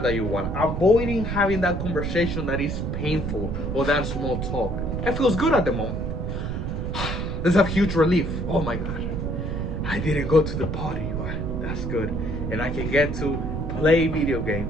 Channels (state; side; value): noise; right; rumble, 3 dB below the sound